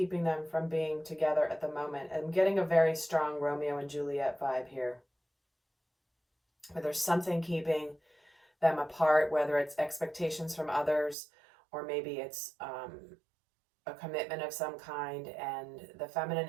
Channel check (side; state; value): left; drops out; at 11.2 s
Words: them from being together at the moment. I'm getting a very strong Romeo and Juliet vibe here. Where there's something keeping them apart, whether it's expectations from others, or maybe it's a commitment of some kind, and the feminine